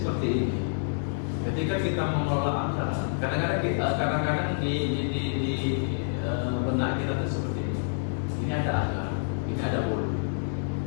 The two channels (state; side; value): silent; right; digital silence